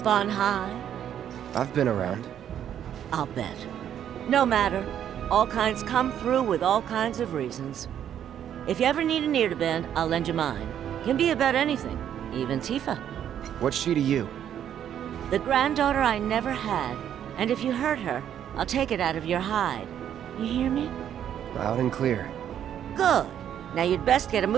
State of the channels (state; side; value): quieter; left; 9.9 dB